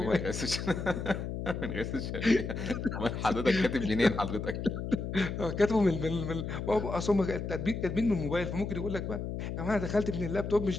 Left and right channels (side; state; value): left; noise; hum, 5 dB below the sound